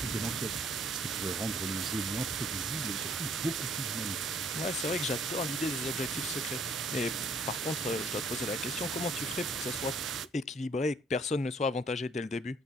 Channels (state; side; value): normal; both; correlation 0.62